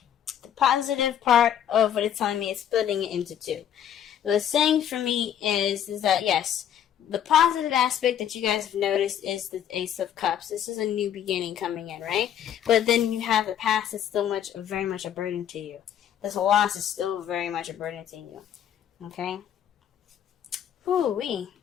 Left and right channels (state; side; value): quieter; right; 9.8 dB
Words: positive part of what it's telling me is splitting it into 2. The saying for me is that yes, the positive aspect that you guys have noticed is the Ace of Cups. This is a new beginning coming in, right? But then you have the past that's still very much a burden to you. This loss is still very much a burden to you. Okay? Whoo-wee.